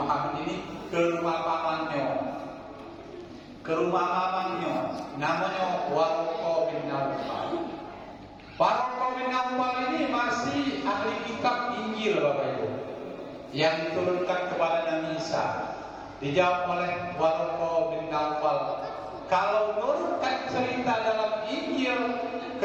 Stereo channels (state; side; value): identical; both; correlation 1.00